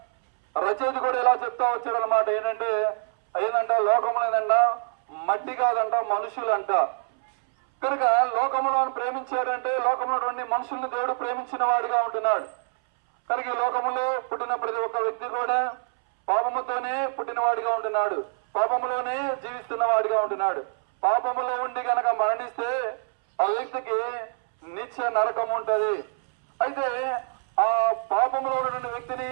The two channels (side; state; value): left; silent; 61 dB below the other